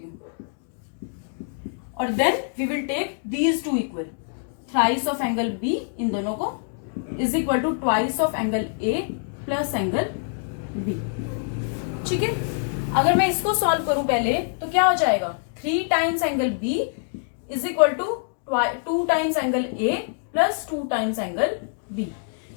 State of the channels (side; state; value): right; silent; digital silence